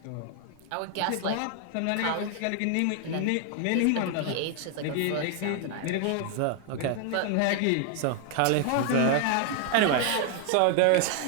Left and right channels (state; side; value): different; both; correlation 0.00